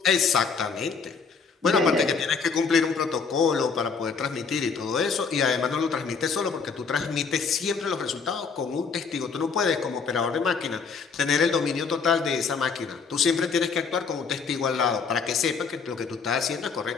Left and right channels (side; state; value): right; quieter; 5.4 dB